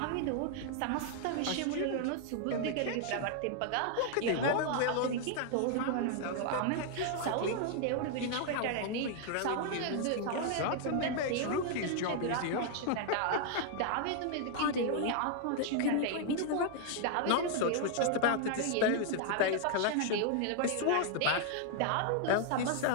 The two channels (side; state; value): both; different; correlation 0.00